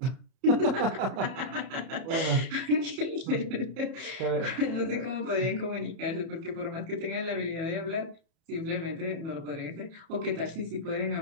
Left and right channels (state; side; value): late; left; 31 ms